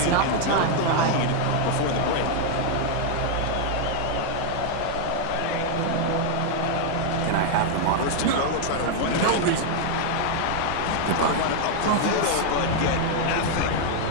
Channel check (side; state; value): both; different; correlation 0.00